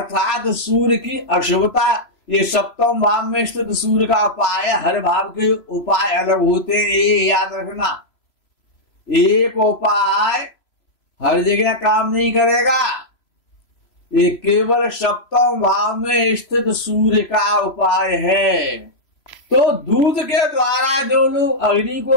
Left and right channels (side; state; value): right; late; 3.0 ms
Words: सूर्य की अशुभता। ये 7वें भाव में स्थित सूर्य का उपाय, हर भाव के उपाय अलग होते हैं, ये याद रखना। एक उपाय हर जगह काम नहीं करेगा, ये केवल 7वें भाव में स्थित सूर्य का उपाय है। तो दूध के द्वारा जो लोग अग्नि